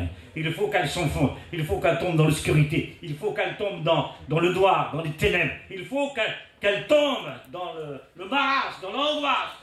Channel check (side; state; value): both; identical; correlation 1.00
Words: Il faut qu'elle s'enfonce. Il faut qu'elle tombe dans l'obscurité. Il faut qu'elle tombe dans le noir, dans les ténèbres. Il faut qu'elle tombe dans le marasme, dans l'angoisse.